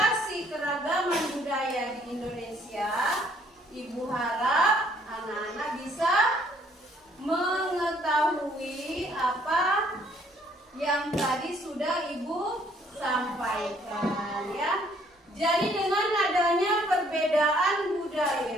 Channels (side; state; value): both; normal; correlation 0.63